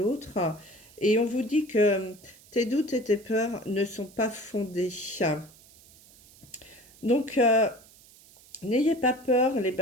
Et on vous dit que tes doutes et tes peurs ne sont pas fondés. Donc, n'ayez pas peur, les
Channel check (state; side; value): noise; right; hiss, 25 dB below the sound